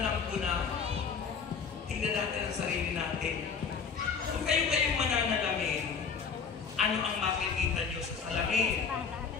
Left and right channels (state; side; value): quieter; right; 6.0 dB